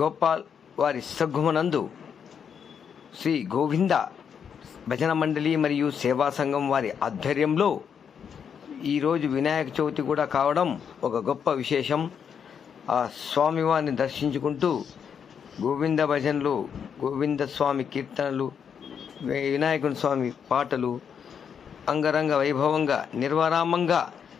వారి సద్గుమనందు శ్రీ గోవింద భజన మండలి మరియు సేవా సంఘం వారి ఆధ్వర్యంలో ఈరోజు వినాయక చవితి కూడా కావడం ఒక గొప్ప విశేషం. ఆ స్వామివారిని దర్శించుకుంటూ గోవింద భజనలు, గోవింద స్వామి కీర్తనలు, వినాయకుని స్వామి పాటలు అంగరంగ వైభవంగా నిర్వరామంగా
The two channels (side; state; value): right; quieter; 7.4 dB